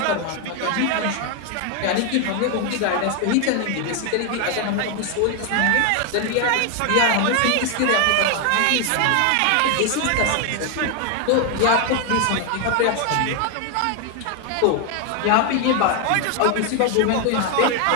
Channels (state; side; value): different; both; correlation 0.01